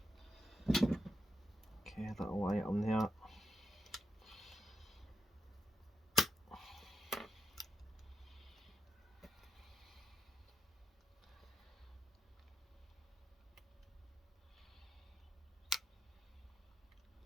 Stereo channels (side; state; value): both; normal; correlation 0.82